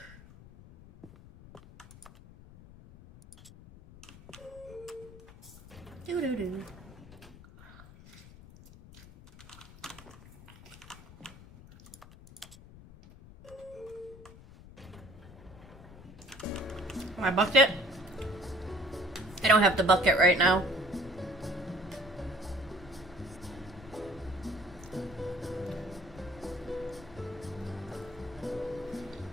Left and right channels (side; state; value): left; noise; rumble, 19 dB below the sound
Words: Doo-doo-doo. My bucket? I don't have the bucket right now.